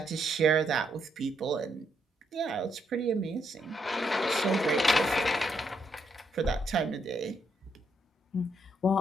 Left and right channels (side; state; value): both; normal; correlation 0.76